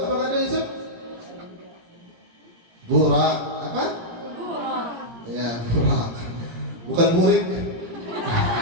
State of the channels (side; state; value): left; late; 17 ms